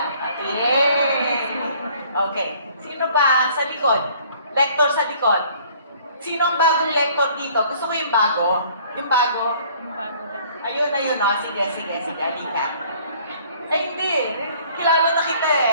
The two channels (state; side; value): inverted; both; correlation -0.56